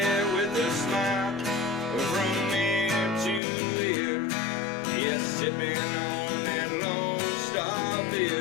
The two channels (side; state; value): right; drops out; at 3.4 s